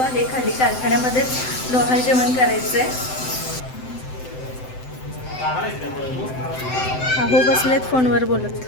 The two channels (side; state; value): right; late; 7.8 ms